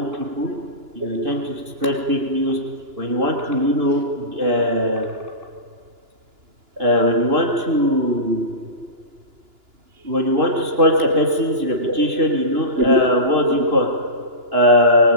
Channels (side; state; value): left; late; 2.9 ms